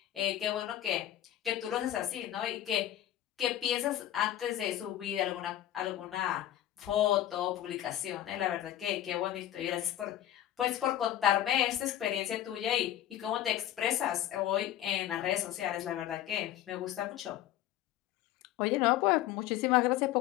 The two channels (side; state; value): right; quieter; 12.5 dB